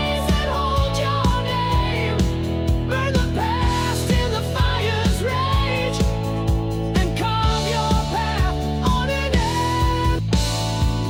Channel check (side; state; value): both; identical; correlation 1.00